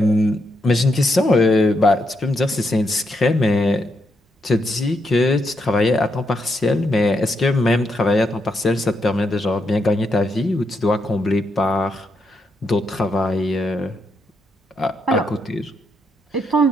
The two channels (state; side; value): normal; both; correlation 0.80